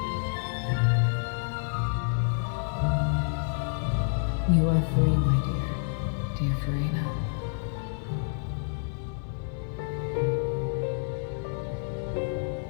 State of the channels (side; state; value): right; silent; digital silence